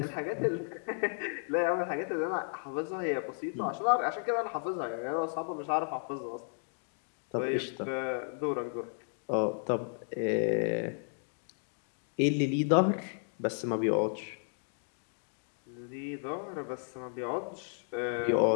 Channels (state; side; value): silent; right; 55 dB below the other